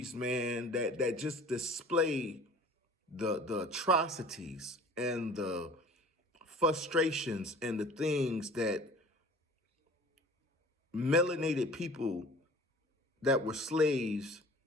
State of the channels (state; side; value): normal; both; correlation 0.45